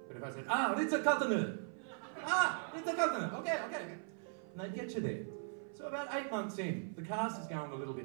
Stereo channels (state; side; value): silent; left; 52 dB below the other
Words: But if I said, Ritz-Carlton, Ritz-Carlton, okay. And they'd get you there. So about 8 months in, the cast is going a little